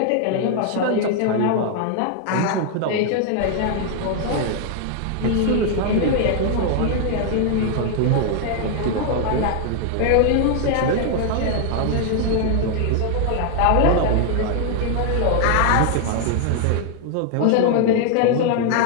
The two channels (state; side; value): different; both; correlation 0.00